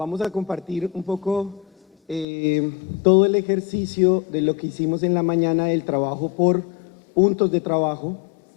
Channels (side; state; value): right; drops out; at 2.2 s